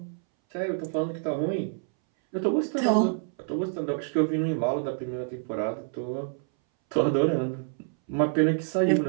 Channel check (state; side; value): silent; left; 60 dB below the other